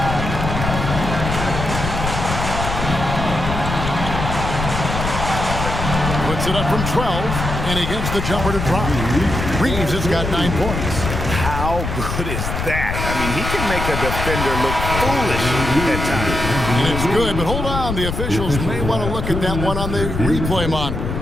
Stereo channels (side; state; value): left; noise; rumble, 4 dB below the sound